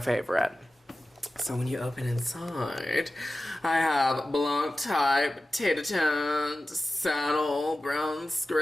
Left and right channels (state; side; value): normal; both; correlation 0.94